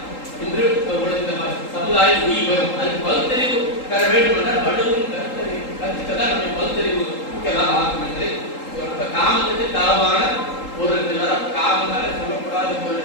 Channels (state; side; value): late; right; 3.8 ms